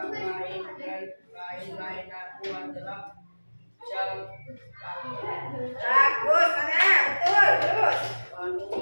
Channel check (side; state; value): both; inverted; correlation -1.00